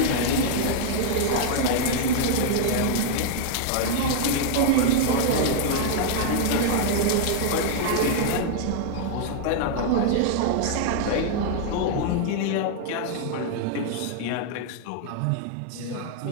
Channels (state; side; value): different; both; correlation 0.00